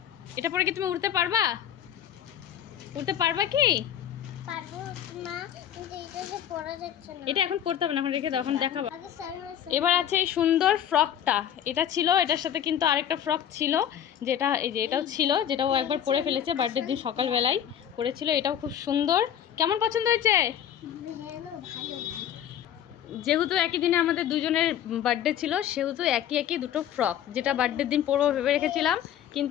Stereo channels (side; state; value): right; quieter; 10.1 dB